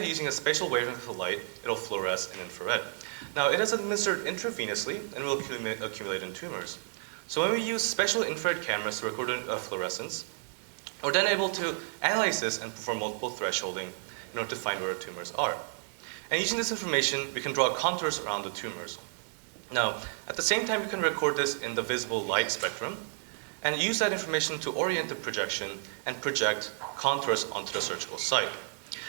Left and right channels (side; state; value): left; silent; digital silence